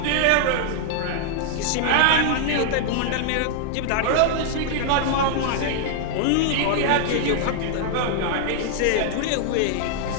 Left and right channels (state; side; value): different; both; correlation 0.00